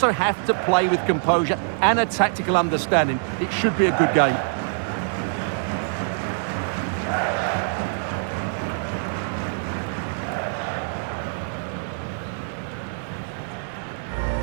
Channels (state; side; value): silent; left; digital silence